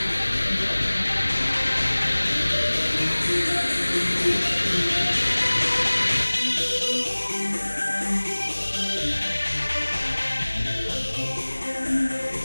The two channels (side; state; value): both; inverted; correlation -1.00